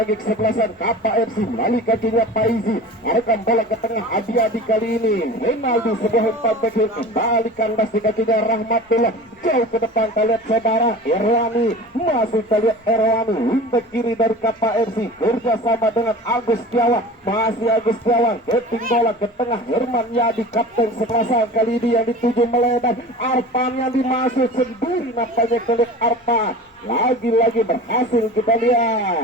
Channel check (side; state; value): both; normal; correlation 0.37